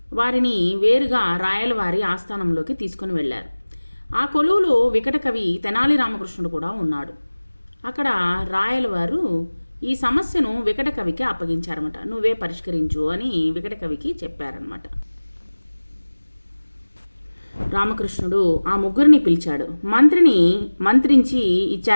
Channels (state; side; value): inverted; both; correlation -1.00